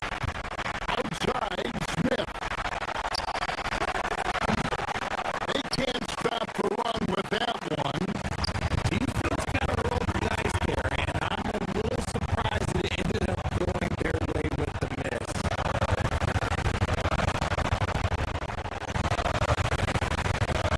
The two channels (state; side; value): identical; both; correlation 1.00